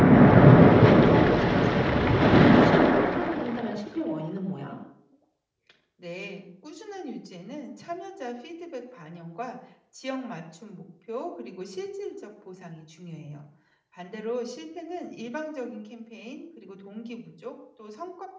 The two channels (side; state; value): both; identical; correlation 1.00